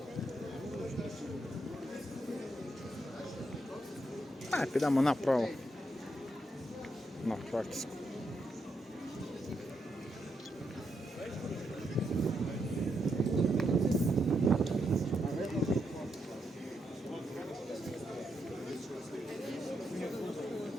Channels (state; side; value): normal; both; correlation 0.81